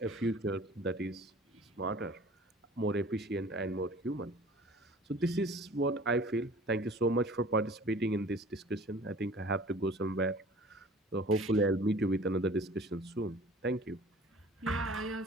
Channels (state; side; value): normal; both; correlation 0.46